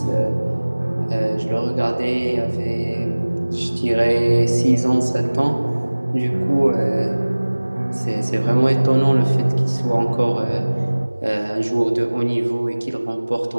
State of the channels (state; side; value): inverted; both; correlation -1.00